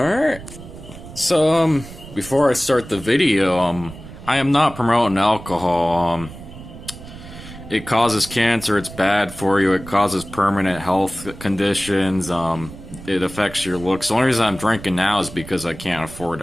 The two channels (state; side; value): noise; right; rumble, 15 dB below the sound